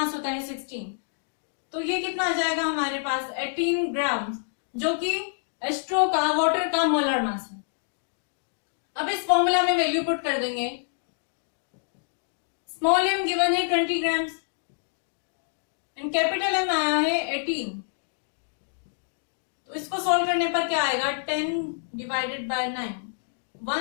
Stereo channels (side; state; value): right; silent; digital silence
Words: होता है 16। तो ये कितना आ जाएगा हमारे पास, 18 ग्राम, जो कि H2O का वाटर का मोलर मास है। अब इस फॉर्मूला में वैल्यू पुट कर देंगे। स्मॉल m गिवन है 20 ग्राम्स एंड कैपिटल M आया है 18। तो इसको सॉल्व करने पर क्या आएगा, 10 डिवाइडेड बाय 9,